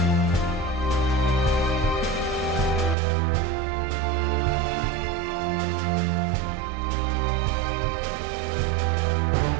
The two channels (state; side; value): drops out; left; at 3.0 s